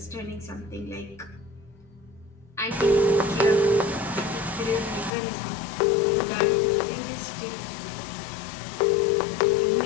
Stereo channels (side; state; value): right; drops out; at 5.1 s